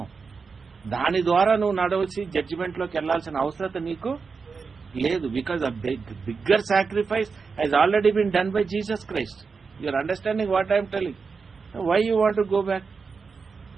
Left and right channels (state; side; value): quieter; left; 5.0 dB